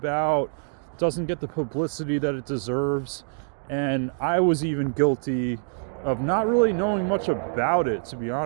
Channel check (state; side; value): silent; left; digital silence